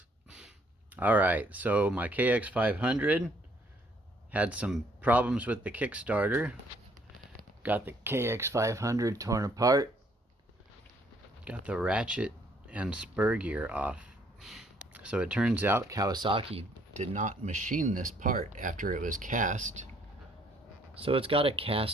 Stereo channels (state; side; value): normal; both; correlation 0.65